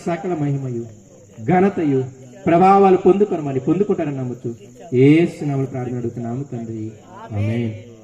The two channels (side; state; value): both; identical; correlation 1.00